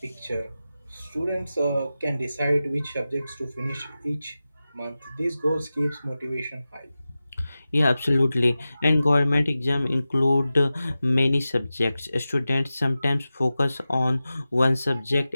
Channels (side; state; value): both; inverted; correlation -0.94